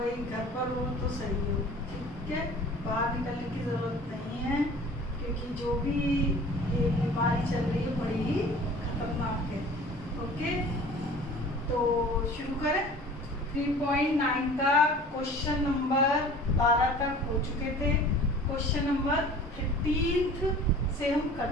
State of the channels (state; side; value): normal; both; correlation 0.45